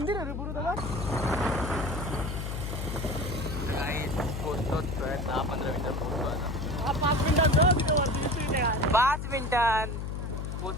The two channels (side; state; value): left; noise; hum, 4 dB below the sound